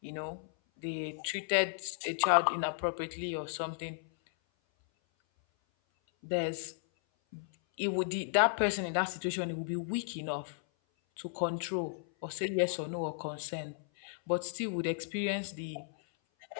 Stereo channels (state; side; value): silent; right; 55 dB below the other